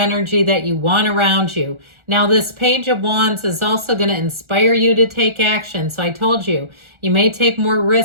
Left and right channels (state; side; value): late; left; 1.4 ms